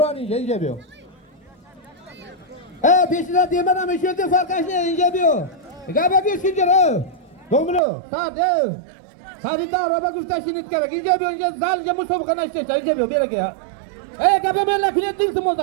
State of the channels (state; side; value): drops out; left; at 7.8 s